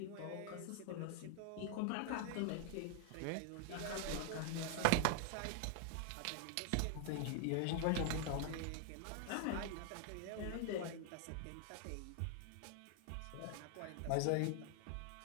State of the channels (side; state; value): both; different; correlation 0.00